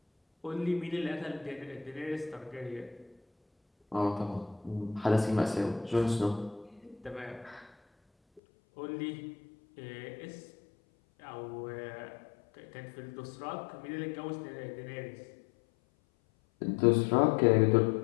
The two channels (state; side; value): drops out; right; at 8.4 s